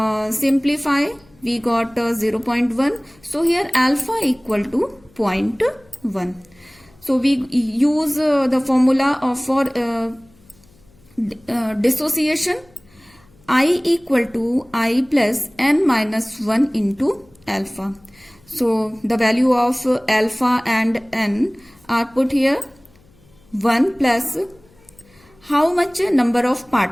simplify, we got 0.1. So here alpha equal to 0.1. So we use the formula for dissociation. I equal to I plus n minus 1 into alpha. So the value of alpha and n are put here. 1 plus how much number of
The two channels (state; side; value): noise; left; hum, 30 dB below the sound